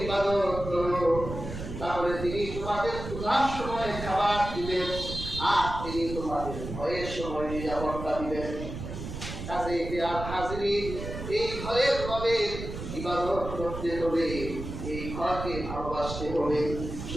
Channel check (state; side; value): noise; right; rumble, 8 dB below the sound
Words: ইবাদত করো, তাহলে তিনি তোমাদের ক্ষুধার সময় খাবার দিবেন, আর তিনি তোমাদের ভয়ের সময় নিরাপত্তা দিবেন। কাজে হাজিরিন, এই ঘরের রবে ইবাদত করতে হবে, এই ঘরকে ভালোবাসতে হবে।